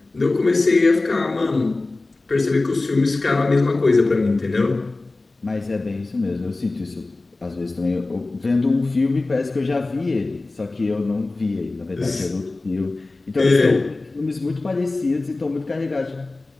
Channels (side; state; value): right; quieter; 3.2 dB